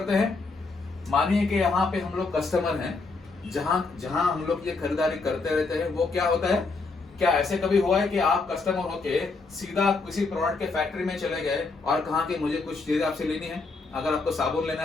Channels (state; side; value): quieter; right; 4.0 dB